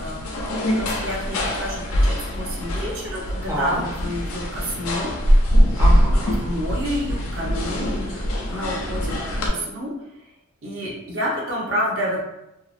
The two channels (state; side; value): normal; both; correlation 0.74